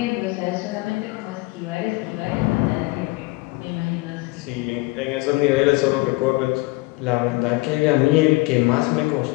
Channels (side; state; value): right; quieter; 23.0 dB